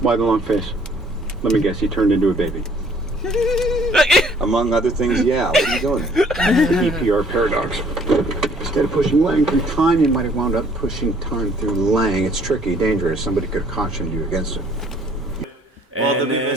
Why the long face? Let me guess, he turned into a baby. Among other things, yeah. What are you doing? EPR paradox. Instead of pushing Lang through time, you might have wound up pushing time through Lang. It's tricky, dangerous. Somebody could have cautioned you against it. Well, And the then-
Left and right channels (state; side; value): normal; both; correlation 0.59